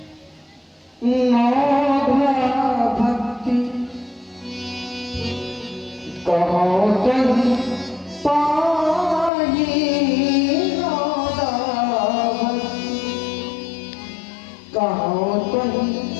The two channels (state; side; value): drops out; right; at 9.3 s